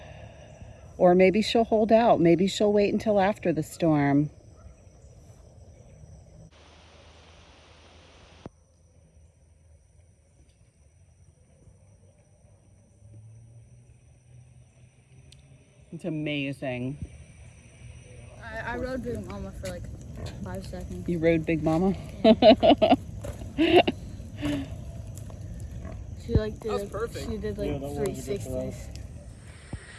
or maybe she'll hold out. Maybe she'll wait until after the storm. It's amazing. I rode Big Mama for like 5 seconds. You rode Big Mama? Yeah. She like did she did like 360s.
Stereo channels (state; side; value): identical; both; correlation 1.00